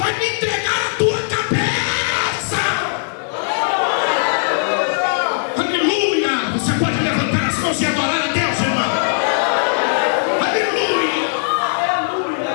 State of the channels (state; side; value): silent; right; digital silence